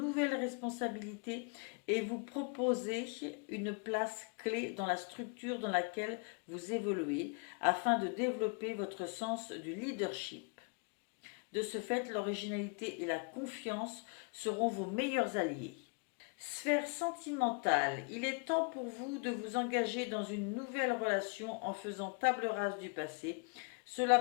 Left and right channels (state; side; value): quieter; right; 34.6 dB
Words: responsabilités et vous proposer une place clé dans la structure dans laquelle vous évoluez afin de développer votre sens du leadership. De ce fait, l'originalité et la confiance seront vos meilleurs alliés. Sphère sentimentale, il est temps pour vous de vous engager dans une nouvelle relation en faisant table rase du passé. Cela